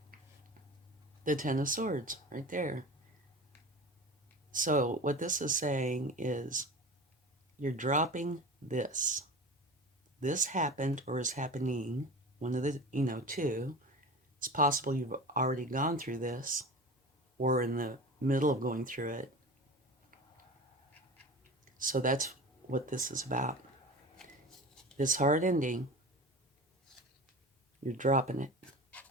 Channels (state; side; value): normal; both; correlation 0.33